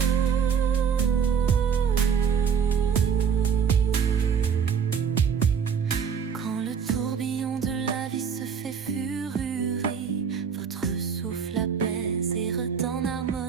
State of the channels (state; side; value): quieter; left; 6.9 dB